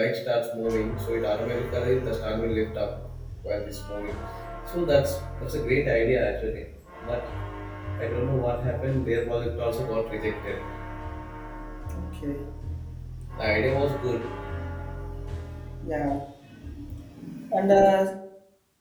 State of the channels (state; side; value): identical; both; correlation 1.00